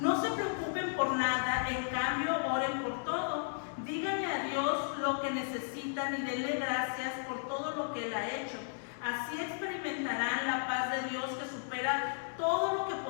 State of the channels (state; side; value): silent; right; 55 dB below the other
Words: se preocupen por nada, en cambio oren por todo. Díganle a Dios lo que necesitan y denle gracias por todo lo que Él ha hecho. Así experimentarán la paz de Dios que supera todo lo que